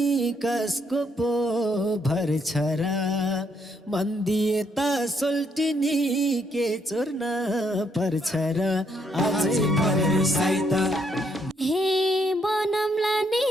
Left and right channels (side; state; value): both; normal; correlation 0.73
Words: कसको पो भर छ र मन दिए त सोल्टिनी के चोर्न पर्छ र अझै भरोसै त हे बनमला नि